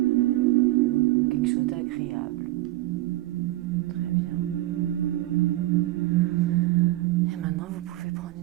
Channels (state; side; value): quieter; left; 16.9 dB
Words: Quelque chose d'agréable. Très bien. Et maintenant, vous pouvez prendre